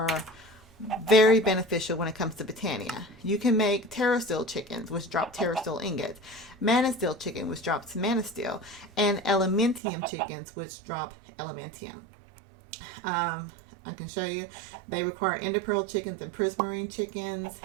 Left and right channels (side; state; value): left; drops out; at 9.8 s